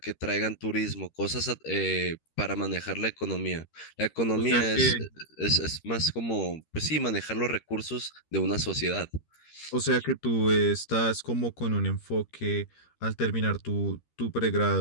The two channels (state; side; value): late; right; 13 ms